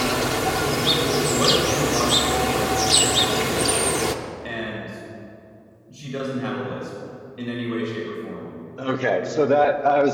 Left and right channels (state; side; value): identical; both; correlation 1.00